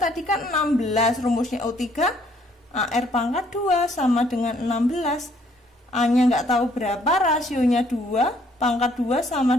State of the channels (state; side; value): normal; both; correlation 0.64